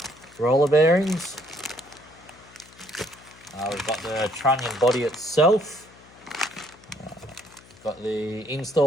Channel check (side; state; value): left; noise; hum, 24 dB below the sound